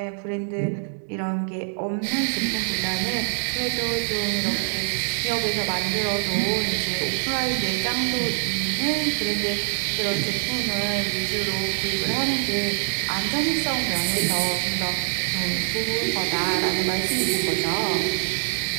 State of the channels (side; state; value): left; silent; digital silence